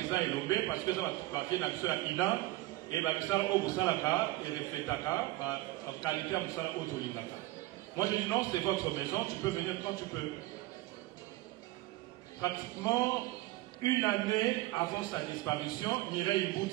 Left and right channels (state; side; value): quieter; left; 18.0 dB